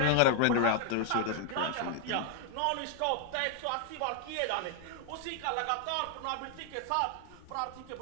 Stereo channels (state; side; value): different; both; correlation 0.00